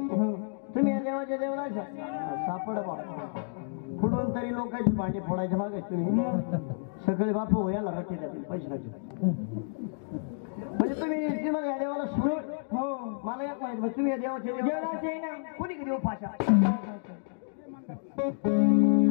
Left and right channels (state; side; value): silent; right; digital silence